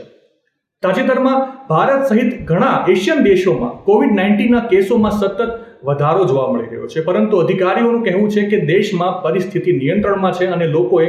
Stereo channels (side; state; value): both; identical; correlation 1.00